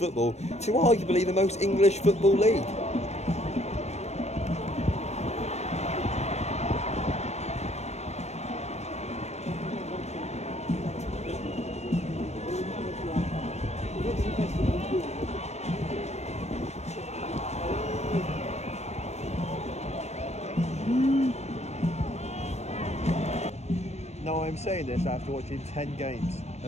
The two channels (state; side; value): late; right; 0.32 ms